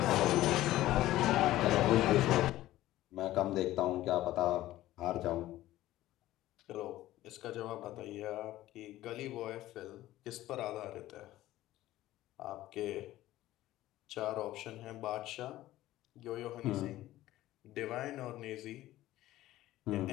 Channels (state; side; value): quieter; right; 15.3 dB